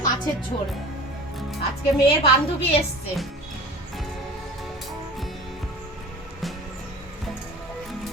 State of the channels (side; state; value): both; normal; correlation 0.39